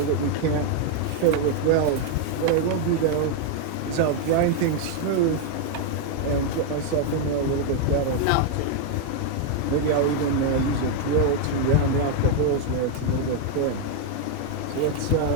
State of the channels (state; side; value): different; both; correlation 0.01